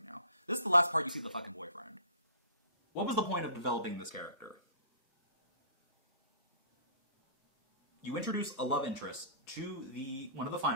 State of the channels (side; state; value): both; inverted; correlation -0.46